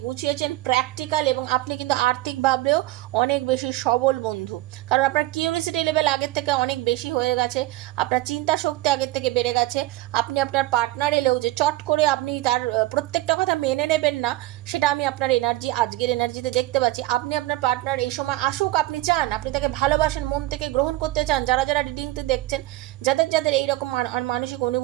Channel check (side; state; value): left; quieter; 17.5 dB